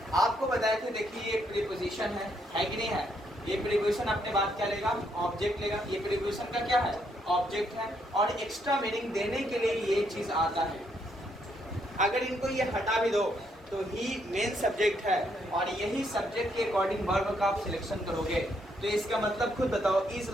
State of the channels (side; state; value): both; normal; correlation 0.74